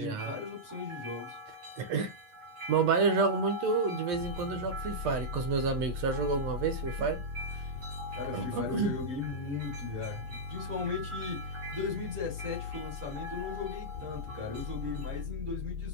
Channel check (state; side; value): late; left; 8.3 ms